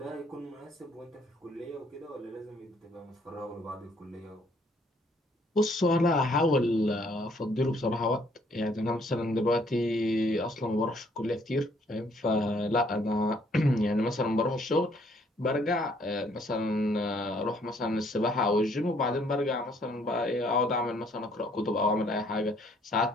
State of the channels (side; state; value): both; normal; correlation 0.65